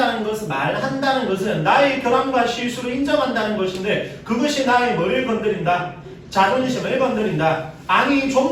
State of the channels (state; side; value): identical; both; correlation 1.00